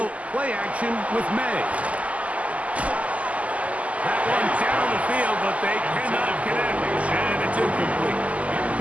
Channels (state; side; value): late; left; 0.069 ms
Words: play action with May. That one's down the field, but they cannot connect. And it's incomplete.